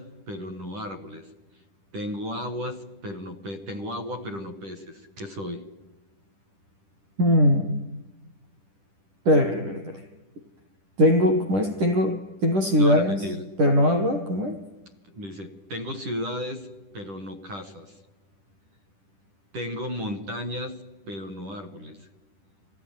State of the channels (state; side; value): late; left; 10 ms